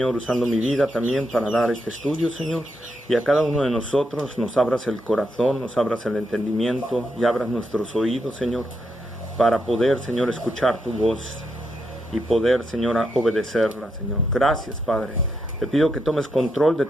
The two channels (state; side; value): normal; both; correlation 0.82